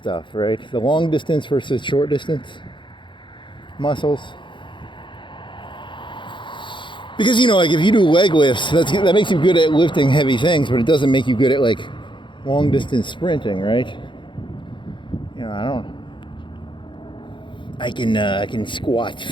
right? The long distance versus short distance muscles. Because, you know, like if you do leg lifts, that makes you good at lifting heavy things, but it doesn't make you good at like long distance sprinting, right? You know, I can squat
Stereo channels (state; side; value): late; right; 0.23 ms